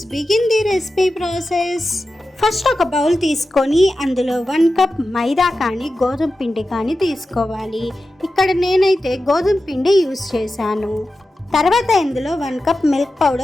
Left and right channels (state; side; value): normal; both; correlation 0.93